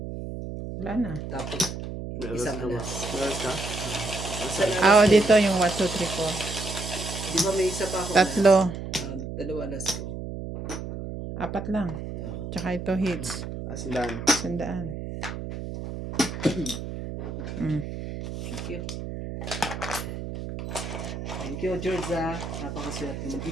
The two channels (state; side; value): noise; right; hum, 7 dB below the sound